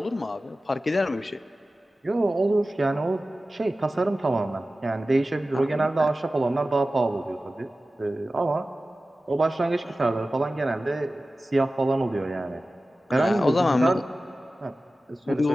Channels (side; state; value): both; normal; correlation 0.95